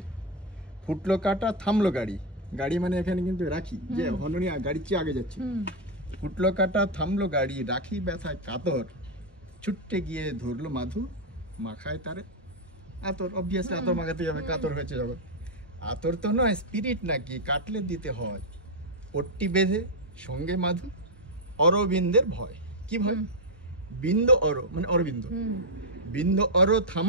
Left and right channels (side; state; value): both; normal; correlation 0.02